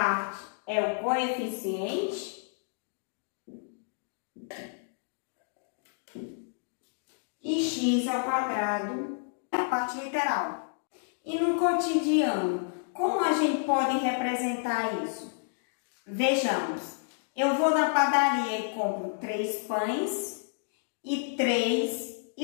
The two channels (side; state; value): right; silent; digital silence